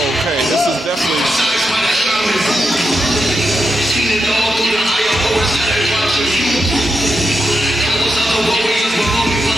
okay. This is definitely.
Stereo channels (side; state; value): both; normal; correlation 0.85